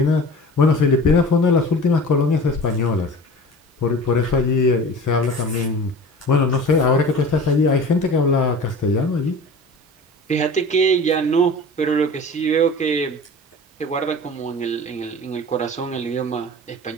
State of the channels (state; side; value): normal; both; correlation 0.39